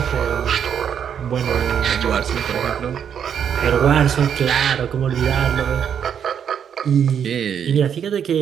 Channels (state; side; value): quieter; left; 8.2 dB